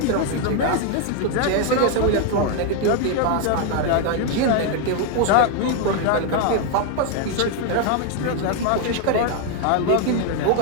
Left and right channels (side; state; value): both; different; correlation 0.01